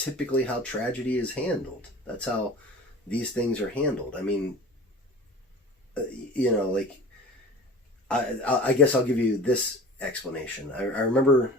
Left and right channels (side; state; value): both; normal; correlation 0.38